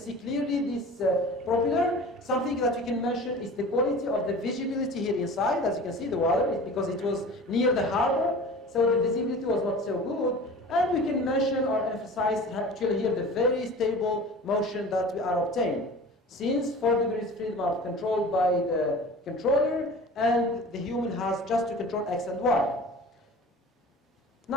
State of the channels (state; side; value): normal; both; correlation 0.39